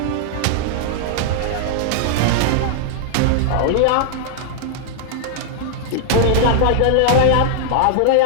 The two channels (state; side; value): different; both; correlation -0.01